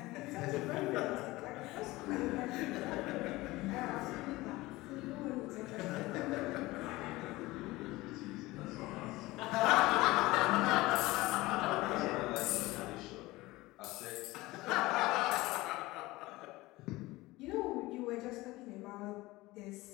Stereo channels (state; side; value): quieter; right; 19.8 dB